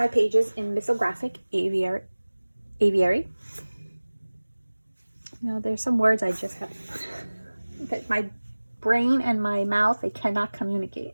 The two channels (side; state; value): both; inverted; correlation -1.00